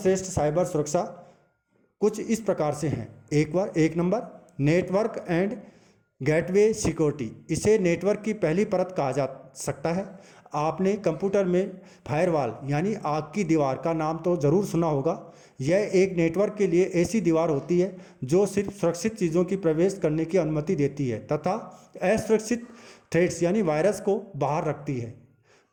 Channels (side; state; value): both; identical; correlation 1.00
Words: साइबर सुरक्षा कुछ इस प्रकार से हैं। एक number, network and gateway security. इसे नेटवर्क की पहली परत कहा जा सकता है। आपने कंप्यूटर में फायरवॉल यानी आग की दीवार का नाम तो ज़रूर सुना होगा। यह एक नेटवर्क के लिए ऐसी दीवार होती है जो सिर्फ सुरक्षित चीज़ों की प्रवेश करने की अनुमति देती है तथा असुरक्षित थ्रेड्स यानी वायरस को बाहर रखती है,